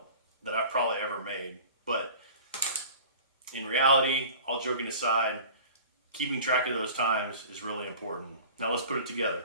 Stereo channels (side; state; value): both; inverted; correlation -0.42